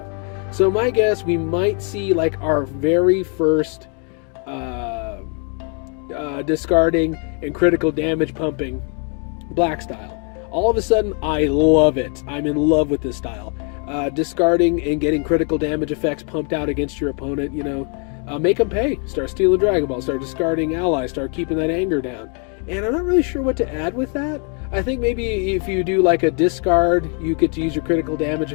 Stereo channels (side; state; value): right; quieter; 37.7 dB